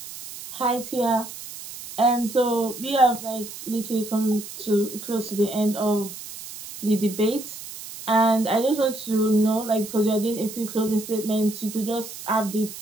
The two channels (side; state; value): right; noise; hiss, 12 dB below the sound